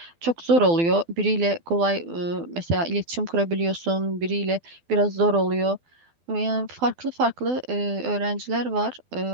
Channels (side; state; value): left; late; 12 ms